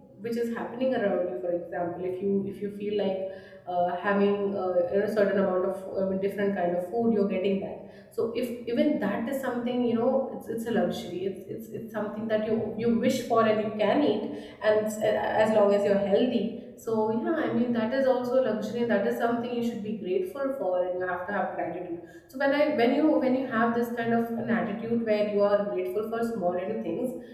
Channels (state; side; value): identical; both; correlation 1.00